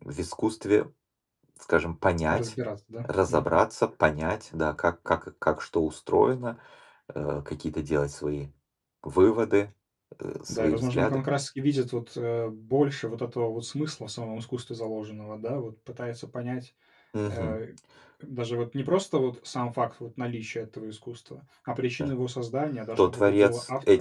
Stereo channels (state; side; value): identical; both; correlation 1.00